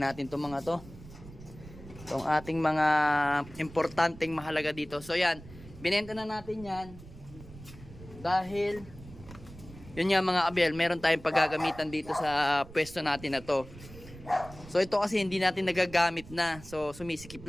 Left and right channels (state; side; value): noise; right; rumble, 17 dB below the sound